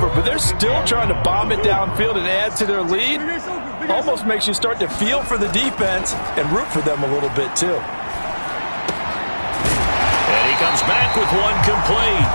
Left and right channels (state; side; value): inverted; both; correlation -1.00